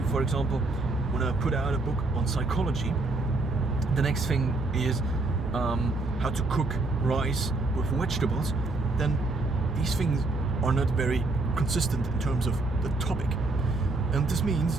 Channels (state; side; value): quieter; left; 3.2 dB